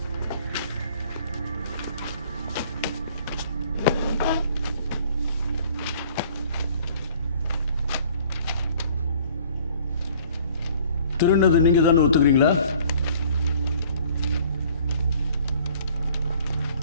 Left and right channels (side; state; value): both; inverted; correlation -0.54